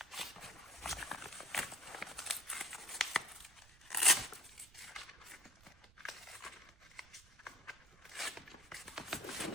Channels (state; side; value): noise; right; rumble, 24 dB below the sound